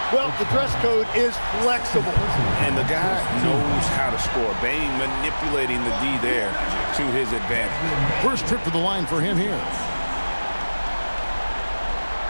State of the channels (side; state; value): both; inverted; correlation -1.00